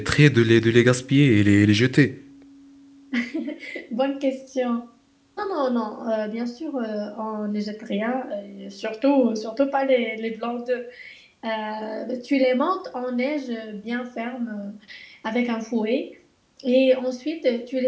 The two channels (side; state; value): both; identical; correlation 1.00